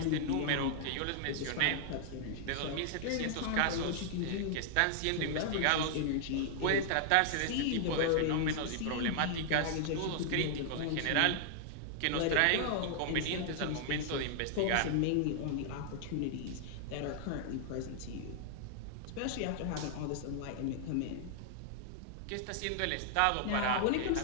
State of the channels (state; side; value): different; both; correlation -0.01